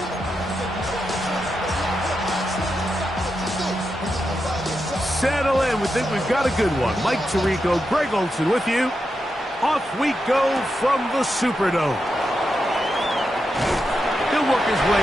Settle in. We think we've got a good one. Mike Tirico, Greg Olson with you. Off we go from the Superdome. He'll work his way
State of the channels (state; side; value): normal; both; correlation 0.87